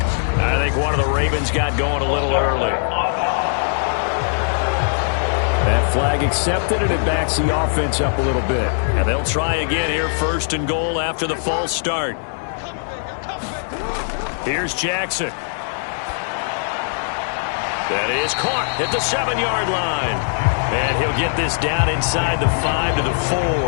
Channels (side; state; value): right; silent; digital silence